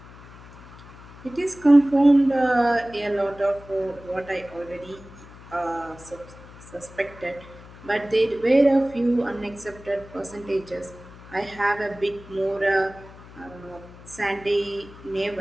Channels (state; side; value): noise; left; hum, 19 dB below the sound